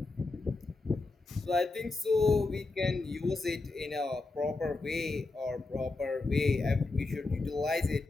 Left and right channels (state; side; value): quieter; right; 3.4 dB